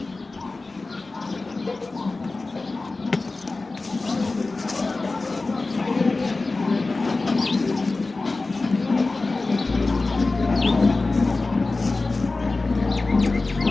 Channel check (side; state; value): right; quieter; 3.4 dB